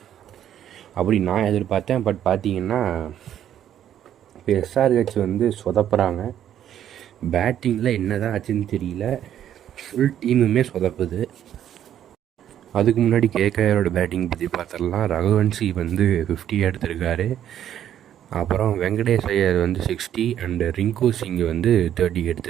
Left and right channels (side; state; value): left; quieter; 10.6 dB